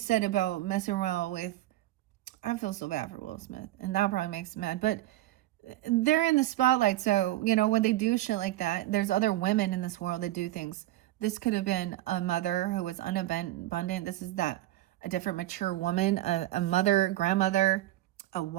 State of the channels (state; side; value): quieter; left; 15.6 dB